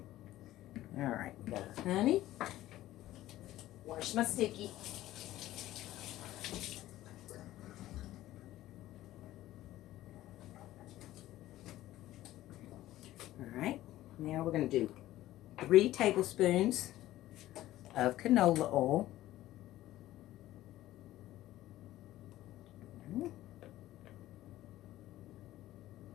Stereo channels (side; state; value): right; quieter; 15.0 dB